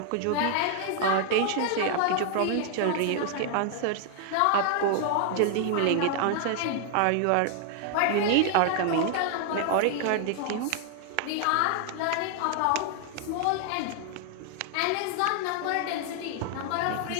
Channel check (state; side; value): different; both; correlation 0.00